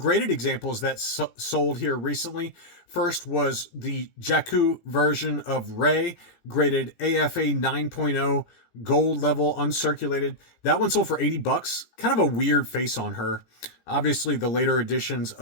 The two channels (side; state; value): right; late; 17 ms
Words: examples that sold here recently. First was the Jakku version of Rey, graded AFA 9.0, gold level, uncirculated. That one sold for 80 bucks. Kind of a weird face on her. Obviously, the later editions